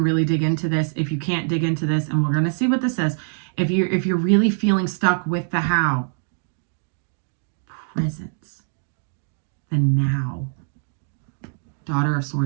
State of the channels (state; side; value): silent; left; 59 dB below the other